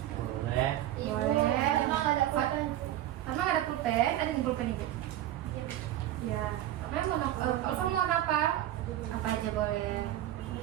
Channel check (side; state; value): left; quieter; 13.2 dB